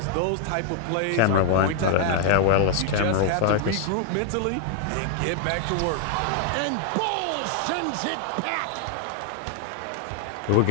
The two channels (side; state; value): both; different; correlation 0.00